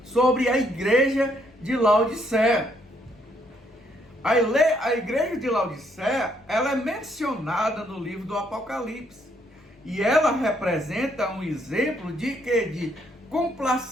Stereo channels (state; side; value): normal; both; correlation 0.71